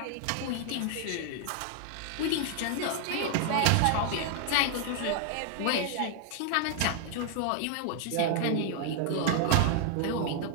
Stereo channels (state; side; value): different; both; correlation 0.00